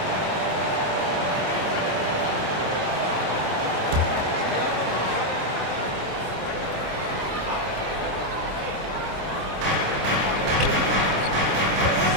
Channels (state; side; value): late; left; 26 ms